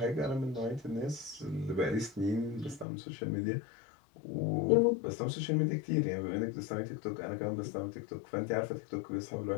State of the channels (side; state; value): right; drops out; at 2.9 s